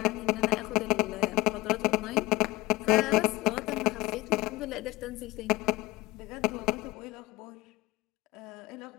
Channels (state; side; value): quieter; right; 20.7 dB